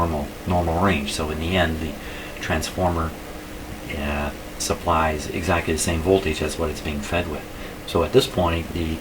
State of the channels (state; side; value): identical; both; correlation 1.00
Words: range. So in the end, the transformer supplies exactly the same voltage as what it's being fed with. So at this point, the